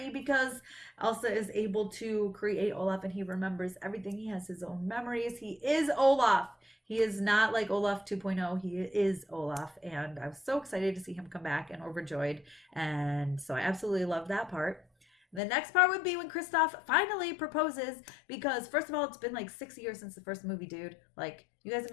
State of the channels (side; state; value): right; drops out; at 15.4 s